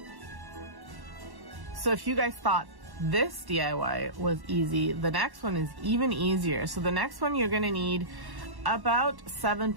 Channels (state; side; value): late; left; 1.1 ms